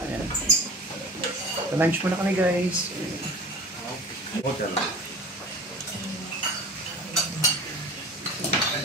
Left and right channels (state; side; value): normal; both; correlation 0.37